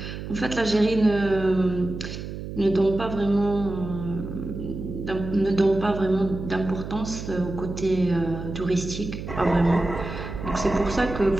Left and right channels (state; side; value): noise; right; hum, 8 dB below the sound